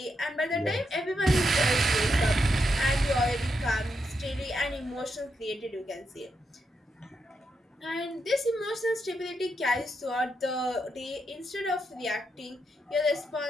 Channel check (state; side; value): normal; both; correlation 0.82